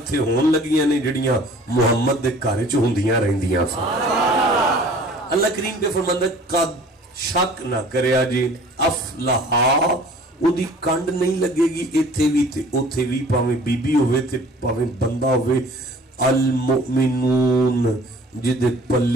ہون لگیاں نے جڑیاں محمد دے گھر چ ہوندیاں رہندیاں اللہ کریم پہ فرماندا قد شک نہ کریا جی افلحا او دی کنڈ نہیں لگے گی ایتھے بھی تے اوتھے بھی پاویں بی بی ہوئے تے پاویں بندہ ہوئے المؤمنون جدے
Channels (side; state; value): both; normal; correlation 0.49